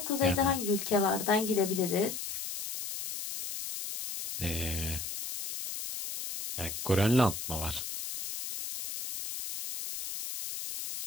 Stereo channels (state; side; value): noise; left; hiss, 6 dB below the sound